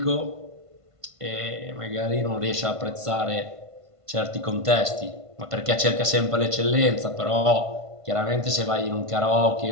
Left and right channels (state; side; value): late; left; 1.5 ms